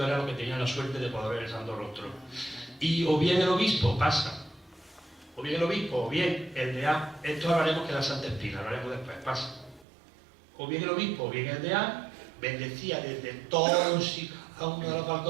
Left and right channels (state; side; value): drops out; left; at 9.9 s